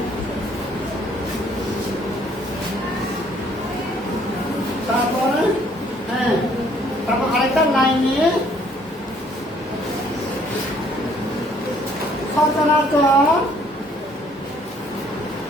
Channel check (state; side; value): normal; both; correlation 0.62